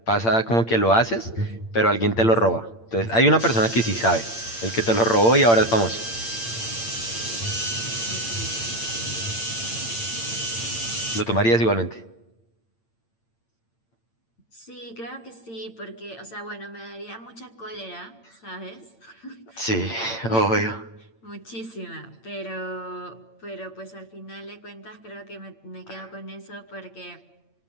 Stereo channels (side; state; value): right; late; 8.8 ms